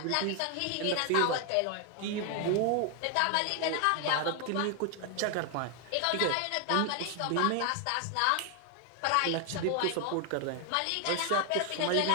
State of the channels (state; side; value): different; both; correlation 0.00